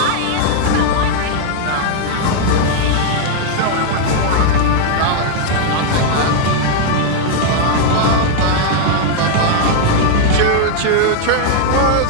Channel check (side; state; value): both; different; correlation 0.00